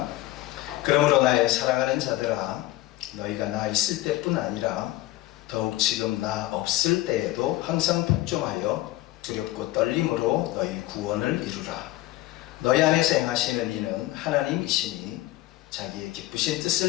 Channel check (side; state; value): right; quieter; 17.0 dB